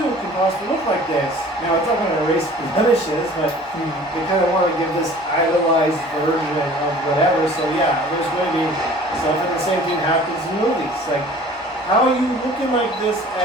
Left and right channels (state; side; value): normal; both; correlation 0.47